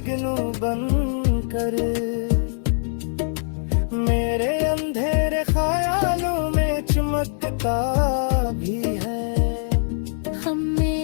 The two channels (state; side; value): silent; right; digital silence